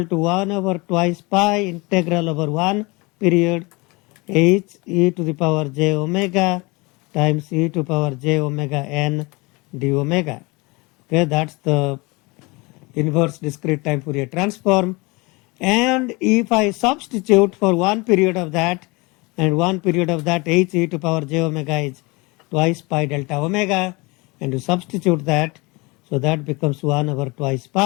to 1 over twice pi integral over 1 period h e to the power j omega times e to power j omega n d omega. Okay, that's the inverse discrete time Fourier transform. And if I substitute for one period of that and one period of that, h e to power j omega is twice pi delta omega, and you substitute that, so that becomes 1 over twice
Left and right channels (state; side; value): quieter; right; 25.8 dB